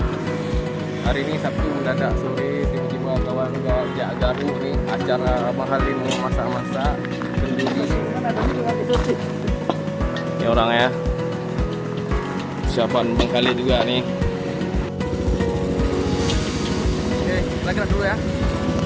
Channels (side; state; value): both; identical; correlation 1.00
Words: Hari ini Sabtu mendadak sore tiba-tiba kawan ngajak garu nih acara mahalin masak-masak kenduri. Ini orang ya. Persiapan Bang Khalid juga nih. Oke, kita gerak dulu ya.